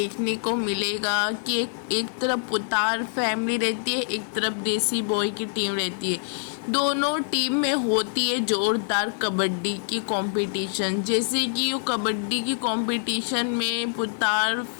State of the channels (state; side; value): silent; right; 61 dB below the other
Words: को मिलेगा कि एक तरफ पुतार फैमिली रहती है, एक तरफ देसी बॉय की टीम रहती है। दोनों टीम में होती है जोरदार कबड्डी की कंपटीशन। जैसे कि वो कबड्डी की कंपटीशन में